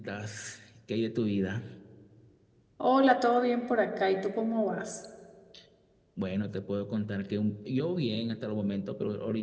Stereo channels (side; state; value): both; identical; correlation 1.00